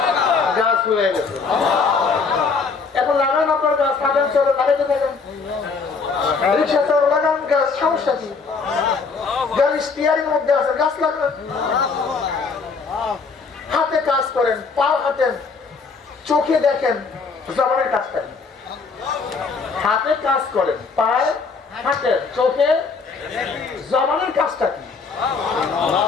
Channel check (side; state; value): right; quieter; 4.8 dB